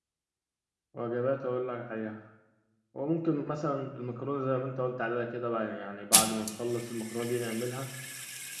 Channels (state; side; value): identical; both; correlation 1.00